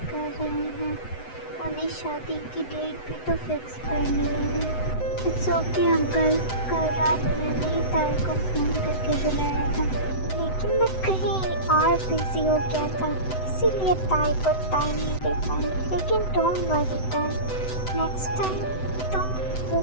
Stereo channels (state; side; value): late; right; 7.9 ms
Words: कर रहे हैं। उन्हें शादी की डेट भी तो फिक्स करनी है। इट्स ओके अंकल, कल रात मैंने ही ताई को फ़ोन करके बुलाया था, लेकिन मैं कहीं और बिजी हो गया था, इसीलिए ताई को टाइम नहीं दे पाया। लेकिन डोंट वरी ताई, नेक्स्ट टाइम तुम